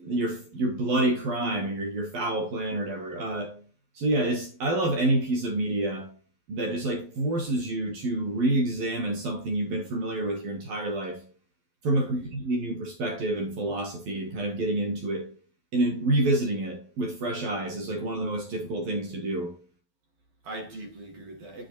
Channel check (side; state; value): left; late; 12 ms